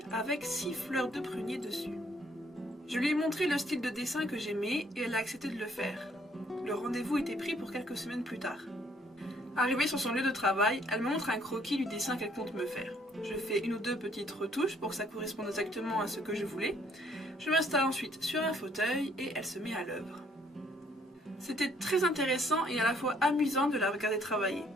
avec 6 fleurs de prunier dessus. Je lui ai montré le style de dessin que j'aimais et elle a accepté de le faire. Le rendez-vous était pris pour quelques semaines plus tard. Arrivée sur son lieu de travail, elle me montre un croquis du dessin qu'elle compte me faire. Je fais une ou deux petites retouches pour que ça corresponde exactement à ce que je voulais. Je m'installe ensuite sur un fauteuil et elle se met à l'œuvre. C'était très intéressant et à la fois amusant de la regarder travailler.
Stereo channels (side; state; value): both; normal; correlation 0.65